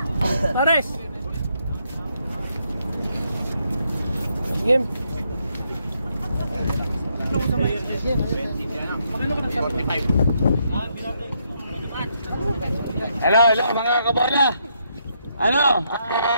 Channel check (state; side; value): inverted; both; correlation -0.76